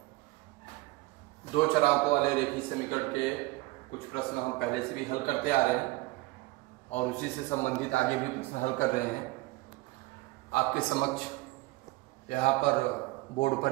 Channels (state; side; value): quieter; left; 21.0 dB